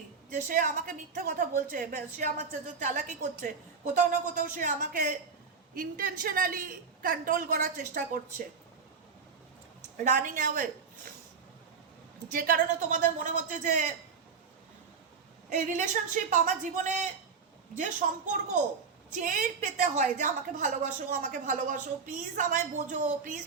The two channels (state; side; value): quieter; left; 5.5 dB